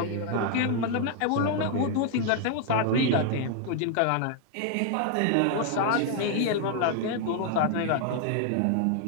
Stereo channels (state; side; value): different; both; correlation 0.00